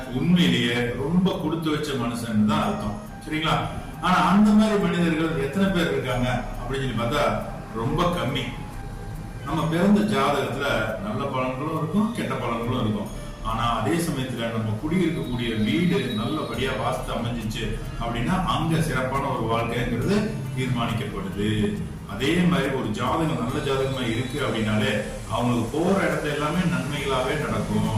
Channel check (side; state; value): both; identical; correlation 1.00